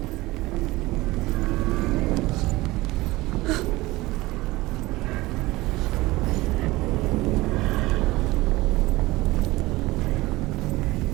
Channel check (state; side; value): quieter; left; 19.8 dB